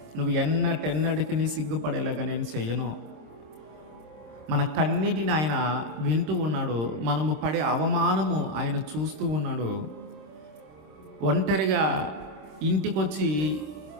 నువ్వు ఎన్నటెన్నటికి సిగ్గుపడేలాగా నేను చెయ్యను. మన కన్నిటిని ఆయన వింటూ ఉన్నాడు, మనము పడే అవమానము ఆయన చూస్తూ ఉన్నాడు. ఒంటరిగా ఇంటికొచ్చి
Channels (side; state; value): left; late; 26 ms